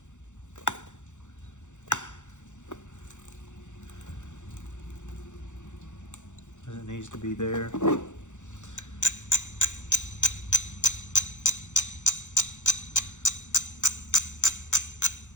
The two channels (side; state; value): right; late; 0.85 ms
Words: It needs to be there.